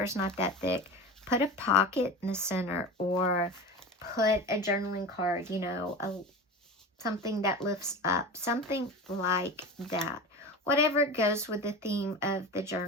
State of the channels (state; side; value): normal; both; correlation 0.30